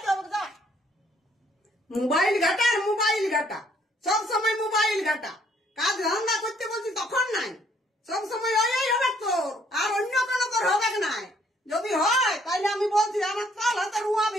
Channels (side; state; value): both; normal; correlation 0.65